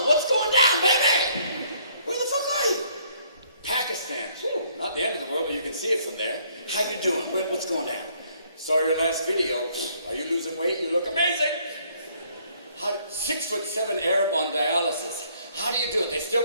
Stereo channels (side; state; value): both; inverted; correlation -0.64